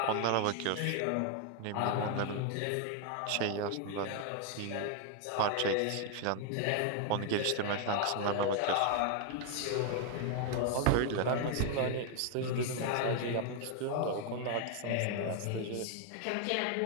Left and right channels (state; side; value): different; both; correlation 0.00